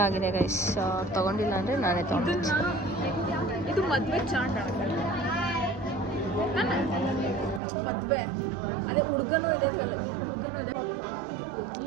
ಆಗಿದೆ ಗೈಸ್. ತೊಗೊಂಡಿಲ್ಲ ಅಂದರೆ ನಾನೇ ತೊಗೊಂಡು. ಇದು ಮದುವೆ ಚಾಟ್ ಮದುವೆ ಅದೇ ಹುಡುಗನೂ ಇದೆ.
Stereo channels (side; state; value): left; drops out; at 7.6 s